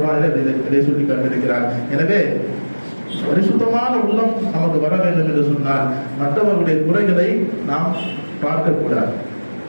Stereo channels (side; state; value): both; inverted; correlation -1.00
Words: இதை சொல்லி காட்டியிருக்கிறார். எனவே பரிசுத்தமான உள்ளம் நமக்கு வர வேண்டும் என்று சொன்னால் மற்றவர்களுடைய குறைகளை நாம் பார்க்கக்கூடாது.